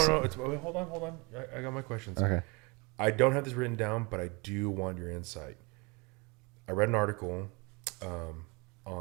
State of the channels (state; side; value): quieter; left; 28.4 dB